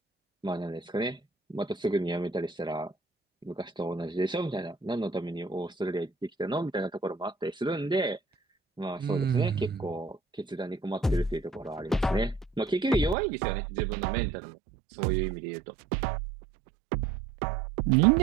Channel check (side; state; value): left; drops out; at 13.2 s